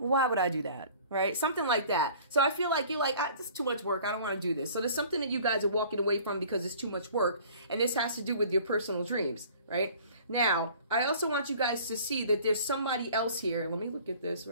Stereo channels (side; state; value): both; inverted; correlation -0.49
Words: would I do that? Right? Something like that. So I feel like you're like, this is too much work. I don't want to do this. So there's something that you guys are walking away from because it's too much work. And this has to do with your personal dreams, right? Now, I also want you guys to see that there's somebody else here. Let me look at this,